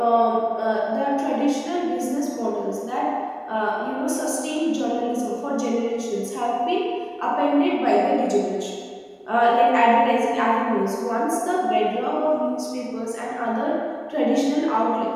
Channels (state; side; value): identical; both; correlation 1.00